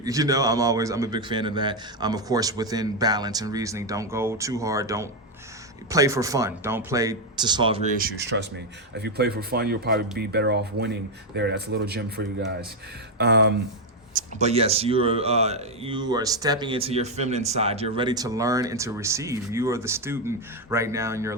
You know, I'm a big fan of that. Of course, within balance and reasoning. Don't go too hard. Don't play for fun. Don't play to solve your issues. Trust me. If you play for fun, you'll probably be better off winning there. That's a little gem for you guys. But yes, you are stepping into your feminine side. You're ready to learn and to receive. You are the student right now in your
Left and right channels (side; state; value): both; normal; correlation 0.04